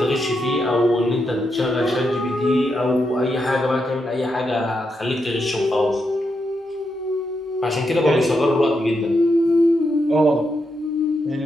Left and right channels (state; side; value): normal; both; correlation 0.83